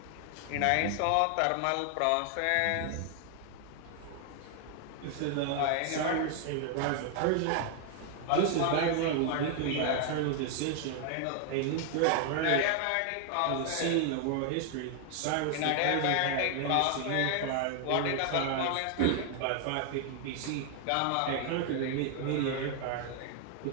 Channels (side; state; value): both; different; correlation 0.00